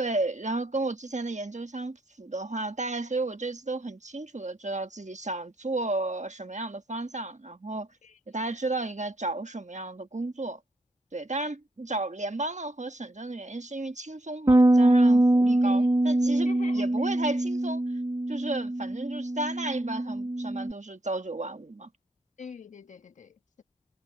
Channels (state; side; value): normal; both; correlation 0.79